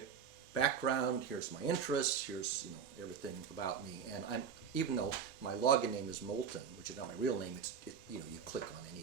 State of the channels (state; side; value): quieter; left; 7.0 dB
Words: background, here's my interests, here's everything about me. And even though my login name is Moulton, which is not my real name, you click on